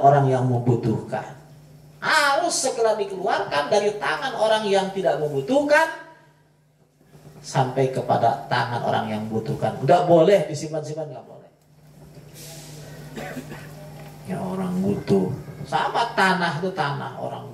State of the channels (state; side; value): identical; both; correlation 1.00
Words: yang membutuhkan. Harus segera dikeluarkan dari tangan orang yang tidak membutuhkan sampai kepada tangan orang yang membutuhkan. Nggak boleh disimpan-simpan, nggak boleh. Ya orang butuh. Sama tanah itu tanah, orang